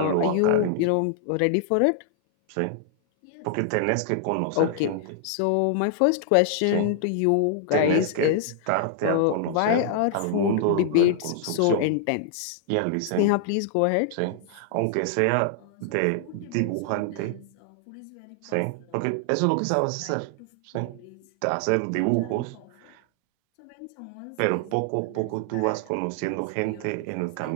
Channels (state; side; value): different; both; correlation -0.01